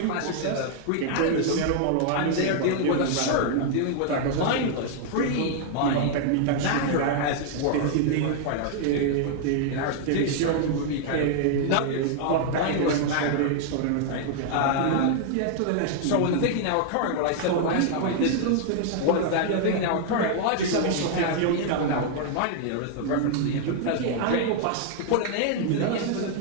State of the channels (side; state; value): both; different; correlation 0.00